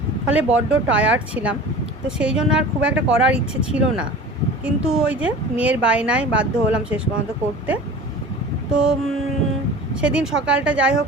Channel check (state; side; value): normal; both; correlation 0.38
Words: ফলে বড্ড টায়ার্ড ছিলাম। তো সেই জন্য আর খুব একটা করার ইচ্ছে ছিল না, কিন্তু ওই যে মেয়ের বায়নায় বাধ্য হলাম শেষ পর্যন্ত করতে। তো সেদিন সকালটা যাই হোক